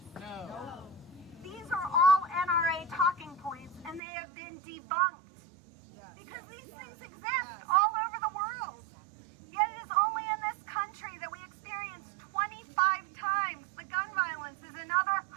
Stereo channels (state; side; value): drops out; left; at 4.0 s